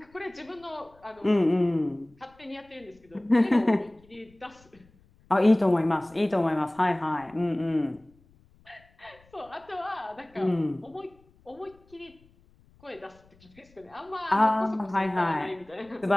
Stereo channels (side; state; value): left; noise; rumble, 30 dB below the sound